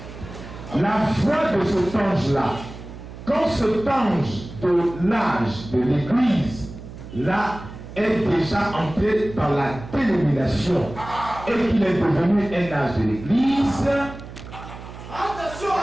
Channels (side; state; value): right; noise; hum, 14 dB below the sound